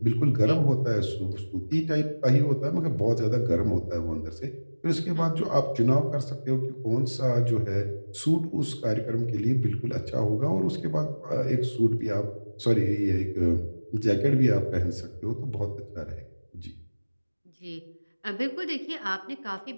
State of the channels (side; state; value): both; inverted; correlation -1.00